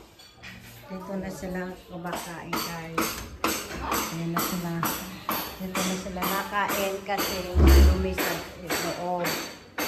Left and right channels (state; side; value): identical; both; correlation 1.00